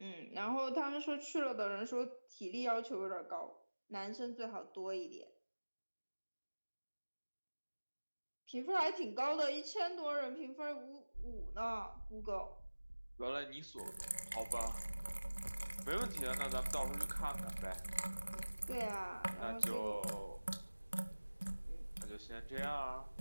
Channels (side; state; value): both; inverted; correlation -1.00